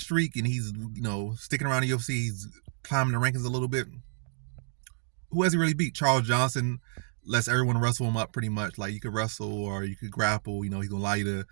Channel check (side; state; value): left; silent; digital silence